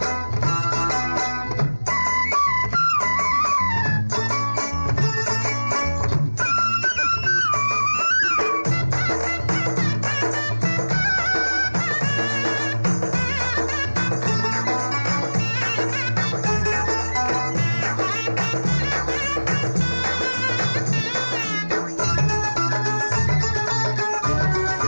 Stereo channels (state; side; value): inverted; both; correlation -1.00